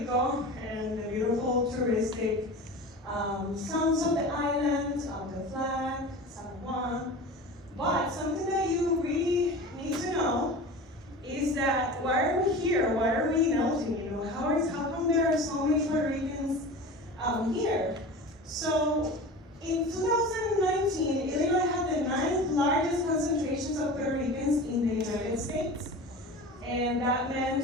and the beautiful touristic sounds of the island, of the flag, San Juan. But something that you really need to know is that why are we here? Why are we in Elgin? How come there are so many Puerto Ricans here? So in 2019, Illinois had the 9th largest concentrations of Puerto Ricans in the United States. And that meant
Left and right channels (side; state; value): both; normal; correlation 0.34